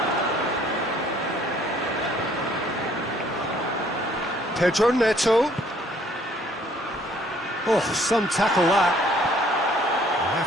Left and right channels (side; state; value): both; normal; correlation 0.61